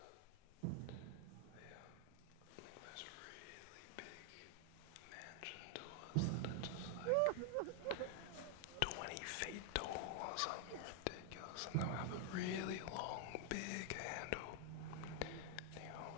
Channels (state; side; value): different; both; correlation 0.00